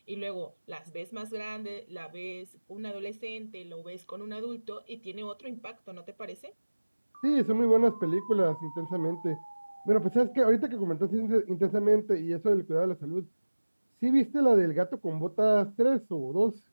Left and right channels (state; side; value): inverted; both; correlation -1.00